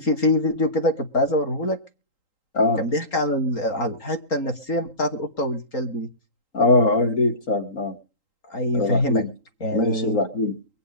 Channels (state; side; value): late; right; 3.8 ms